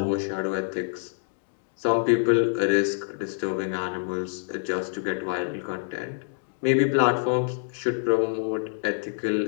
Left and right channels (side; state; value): right; silent; digital silence